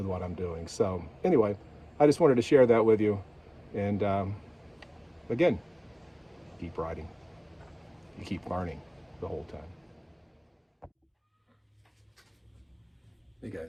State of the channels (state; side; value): identical; both; correlation 1.00